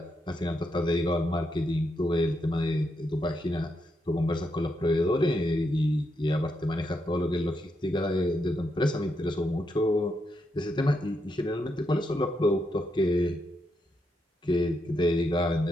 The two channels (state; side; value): normal; both; correlation 0.81